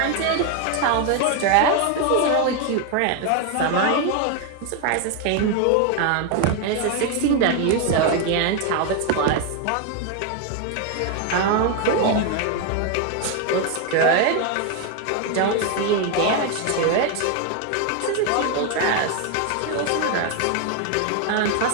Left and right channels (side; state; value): both; different; correlation 0.01